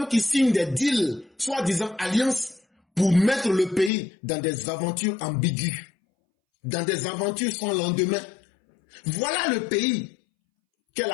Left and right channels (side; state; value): right; drops out; at 3.9 s